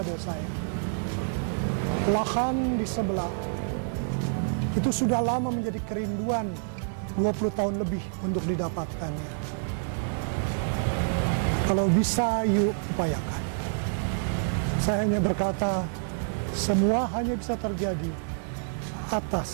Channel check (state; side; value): silent; left; digital silence